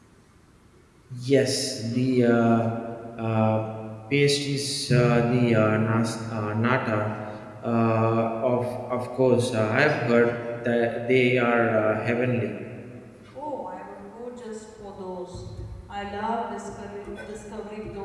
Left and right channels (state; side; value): identical; both; correlation 1.00